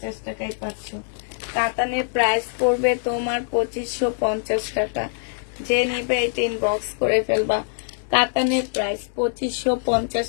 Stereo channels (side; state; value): right; silent; digital silence